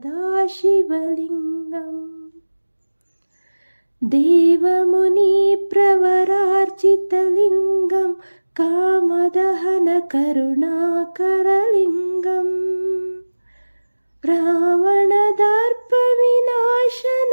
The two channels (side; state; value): both; inverted; correlation -1.00